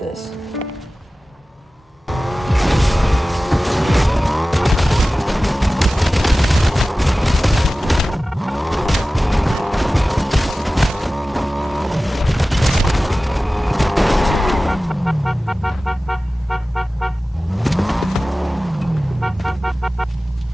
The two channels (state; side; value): normal; both; correlation 0.96